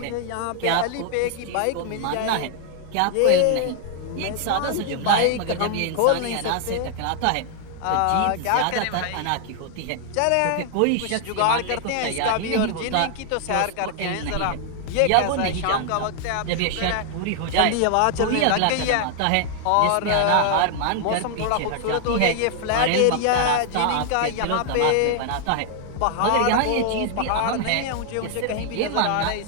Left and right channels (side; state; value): both; different; correlation 0.00